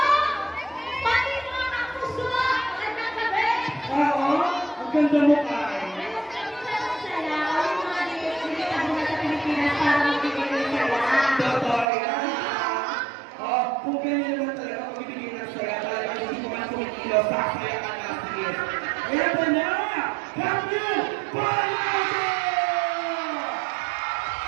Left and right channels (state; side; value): drops out; left; at 11.9 s